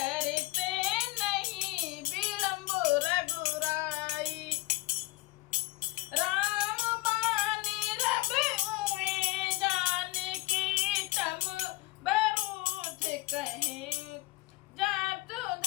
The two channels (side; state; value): right; quieter; 20.9 dB